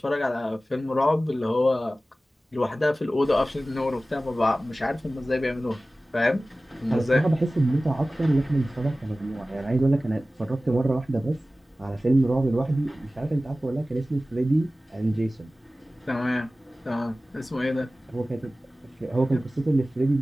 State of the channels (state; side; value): normal; both; correlation 0.96